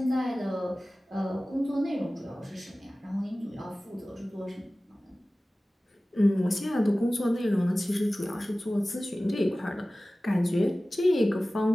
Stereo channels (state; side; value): normal; both; correlation 0.97